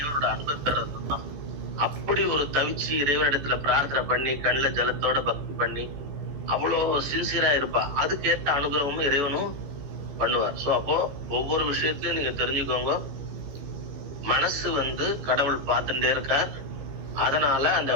அன்பை பெறதும் தான். அப்படி ஒரு தவிச்சு இறைவனிடத்துல பிரார்த்தனை பண்ணி கண்ணுல ஜலத்தோட பக்தி பண்ணி அவ்வளோ சின்சியரா இருப்பா. அதுக்கேற்ற அனுகிரகமும் இறைவனும் பண்ணுவார். சோ அப்போ ஒவ்வொரு விஷயத்திலயும் நீங்க தெரிஞ்சுக்கோங்க, மனசு வந்து கடவுள் பார்த்துட்டே இருக்கார். அதனால அந்த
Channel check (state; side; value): late; left; 14 ms